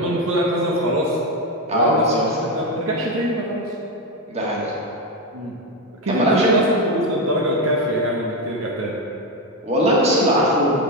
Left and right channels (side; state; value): both; normal; correlation 0.10